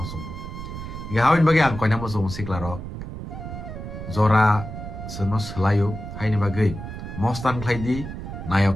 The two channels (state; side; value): noise; right; rumble, 9 dB below the sound